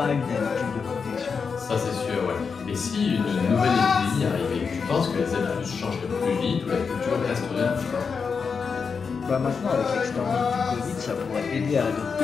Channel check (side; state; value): right; quieter; 5.6 dB